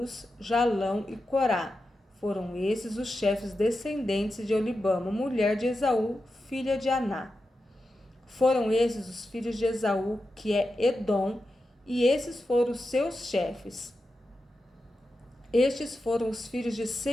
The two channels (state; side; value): normal; both; correlation 0.90